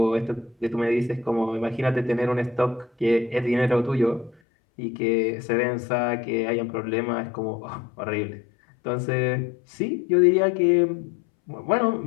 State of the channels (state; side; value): drops out; right; at 4.4 s